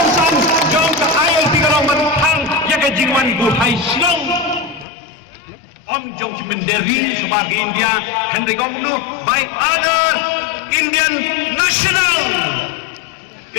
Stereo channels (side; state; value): right; drops out; at 4.9 s